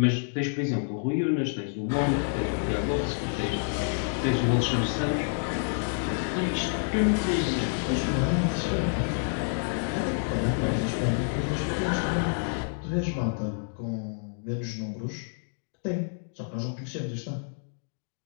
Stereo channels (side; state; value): right; silent; digital silence